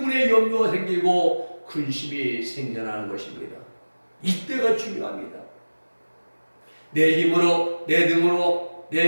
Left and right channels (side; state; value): both; inverted; correlation -1.00